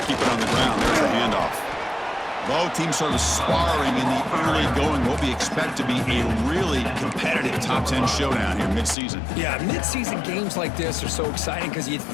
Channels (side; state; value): right; drops out; at 9.0 s